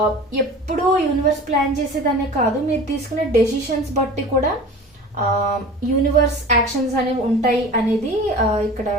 ఎప్పుడూ యూనివర్స్ ప్లాన్ చేసేదనే కాదు, మీరు తీసుకునే డెసిషన్స్ బట్టి కూడా యూనివర్స్ యాక్షన్స్ అనేవి ఉంటాయి అనేది ఇక్కడ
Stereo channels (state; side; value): normal; both; correlation 0.38